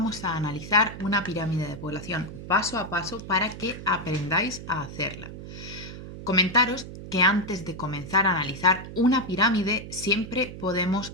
a analizar una pirámide de población paso a paso para que aprendáis a hacerla. Comentaros que antes de comenzar a analizar una pirámide siempre podemos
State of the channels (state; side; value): noise; right; hum, 11 dB below the sound